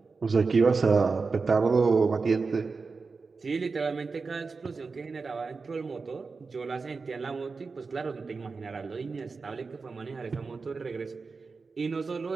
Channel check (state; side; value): quieter; left; 4.5 dB